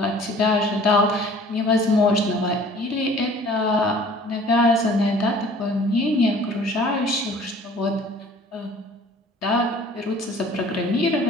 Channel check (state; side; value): normal; both; correlation 0.51